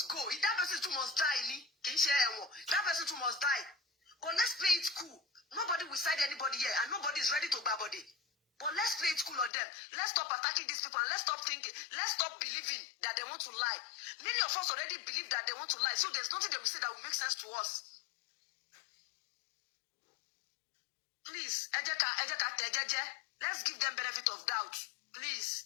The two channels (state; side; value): drops out; right; at 9.5 s